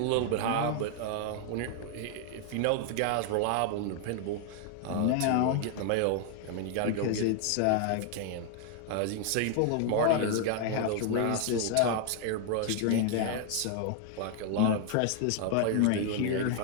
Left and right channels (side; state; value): both; different; correlation 0.00